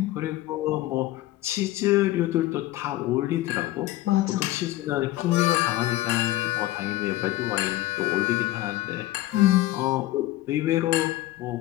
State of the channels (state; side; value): quieter; right; 16.1 dB